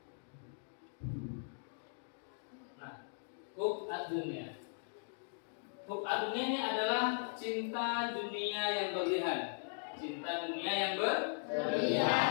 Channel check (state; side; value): silent; right; digital silence